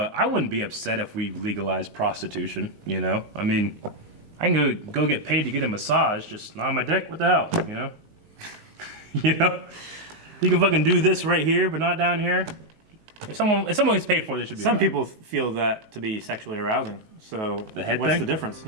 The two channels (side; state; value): left; late; 19 ms